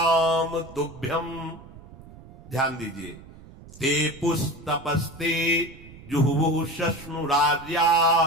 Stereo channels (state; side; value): noise; right; rumble, 19 dB below the sound